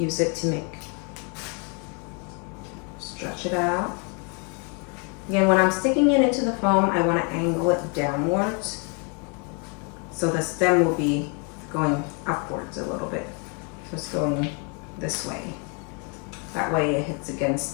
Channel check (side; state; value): right; quieter; 35.7 dB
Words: it to stretch it out. Again, when I'm sticking it into the foam, I want to angle it downwards. So the stem will be going upwards a little bit. So it's going this way. That way it hits